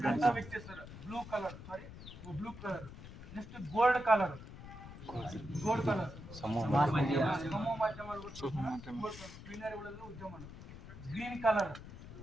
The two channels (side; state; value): left; noise; rumble, 14 dB below the sound